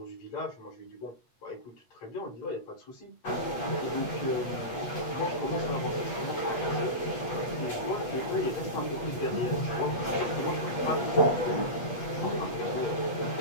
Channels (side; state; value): right; late; 8.3 ms